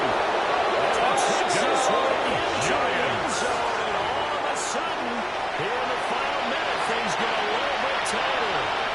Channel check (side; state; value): both; identical; correlation 1.00